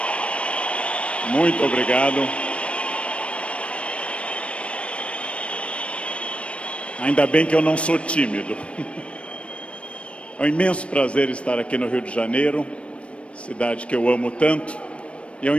Muito obrigado. Ainda bem que eu não sou tímido. É um imenso prazer estar aqui no Rio de Janeiro, cidade que eu amo tanto. E é um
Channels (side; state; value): right; late; 0.061 ms